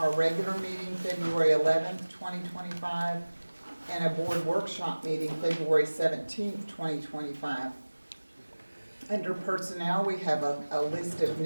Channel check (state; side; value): inverted; both; correlation -1.00